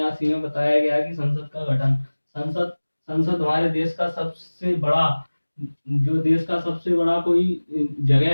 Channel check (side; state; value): both; inverted; correlation -1.00